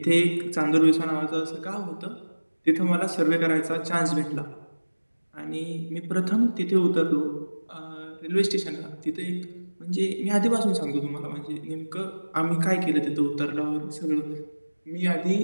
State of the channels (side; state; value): both; inverted; correlation -1.00